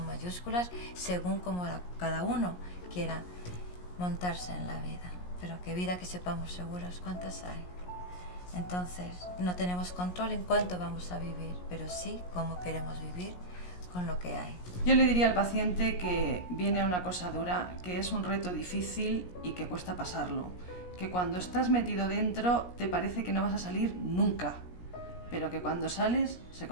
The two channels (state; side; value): late; right; 17 ms